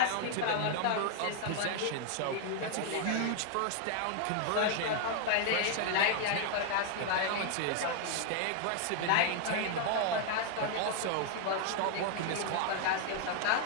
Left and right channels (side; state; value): both; different; correlation 0.00